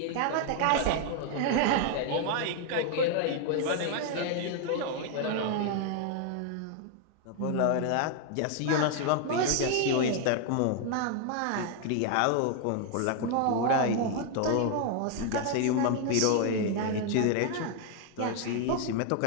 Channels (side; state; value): both; different; correlation 0.00